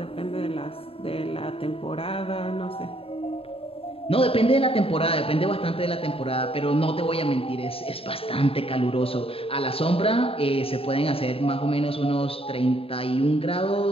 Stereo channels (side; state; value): right; late; 0.27 ms